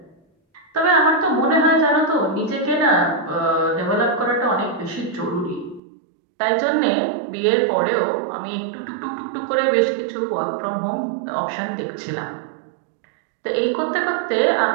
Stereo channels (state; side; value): drops out; left; at 5.8 s